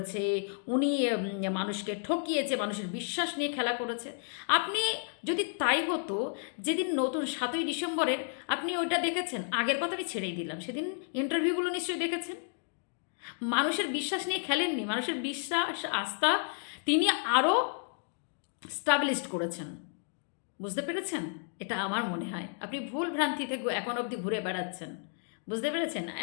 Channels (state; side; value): silent; right; 56 dB below the other